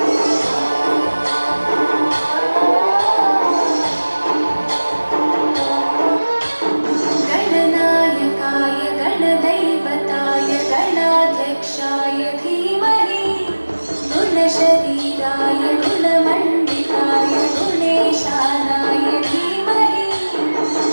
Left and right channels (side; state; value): both; inverted; correlation -1.00